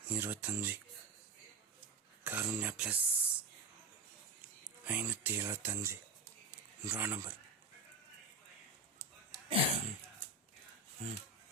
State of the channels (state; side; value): quieter; left; 3.6 dB